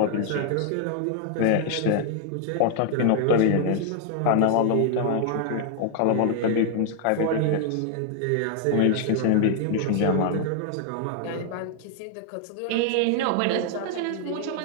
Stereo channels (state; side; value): different; both; correlation 0.00